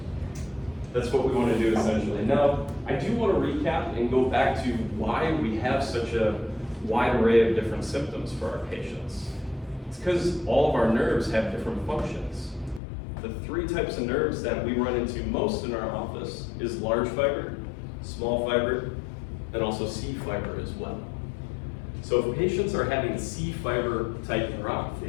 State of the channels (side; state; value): right; drops out; at 12.8 s